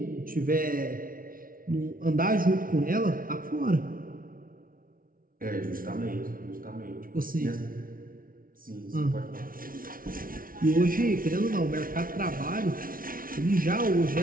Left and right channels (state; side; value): late; left; 0.42 ms